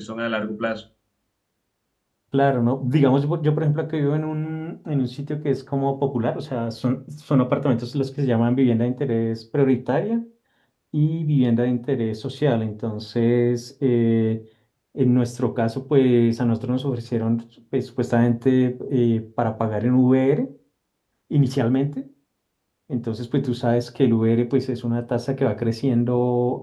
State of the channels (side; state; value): both; identical; correlation 1.00